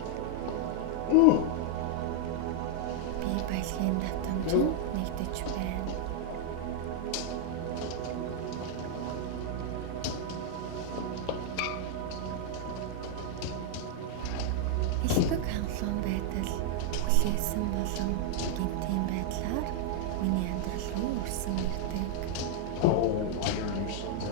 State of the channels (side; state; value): both; different; correlation 0.00